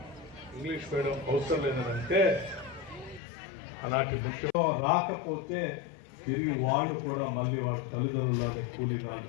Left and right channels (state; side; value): drops out; right; at 3.2 s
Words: ఇంగ్లీష్ మీడియం అవసరం లేదని అంటే అలాంటి ముఖ్యంగా రాకపోతే తిరిగి వాళ్ళు కూడా మళ్ళీ వాళ్ళ తల్లిదండ్రులనే కూలీనాలు